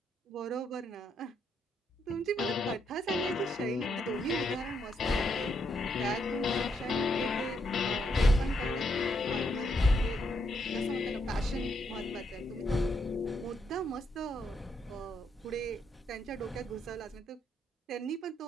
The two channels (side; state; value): both; normal; correlation 0.77